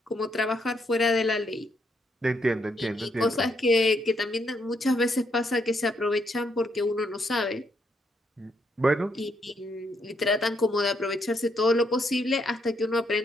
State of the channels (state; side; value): normal; both; correlation 0.75